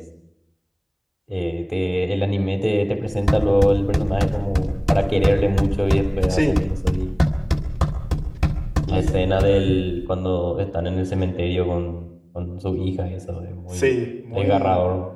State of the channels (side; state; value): both; identical; correlation 1.00